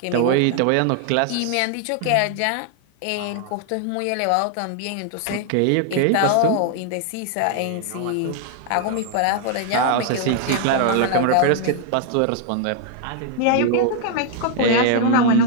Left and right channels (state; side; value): different; both; correlation 0.00